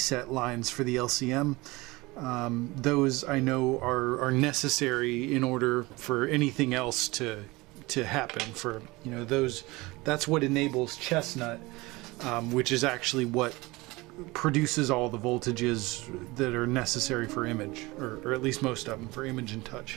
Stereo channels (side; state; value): left; quieter; 22.3 dB